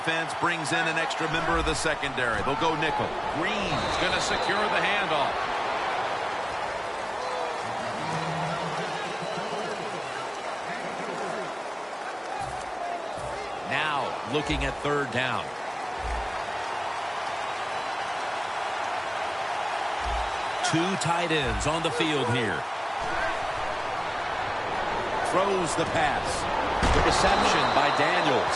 brings in an extra member of the secondary. They'll go nickel. Green's going to secure the handoff. Now looking at third down. Two tight ends on the field here. Throws the pass. The reception by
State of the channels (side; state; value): both; identical; correlation 1.00